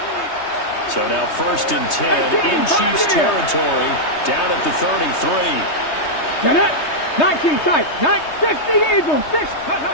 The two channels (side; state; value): right; late; 3.2 ms